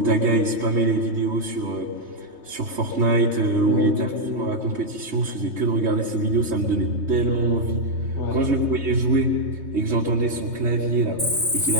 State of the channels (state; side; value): late; left; 3.2 ms